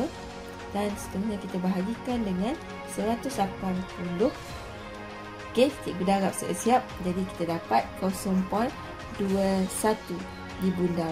dan seterusnya kita bahagikan dengan 180. Okey, cikgu darab siap-siap. Jadi kita dapat 0.21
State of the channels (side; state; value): both; identical; correlation 1.00